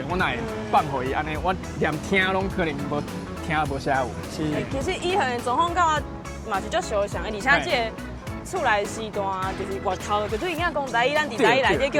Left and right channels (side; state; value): both; identical; correlation 1.00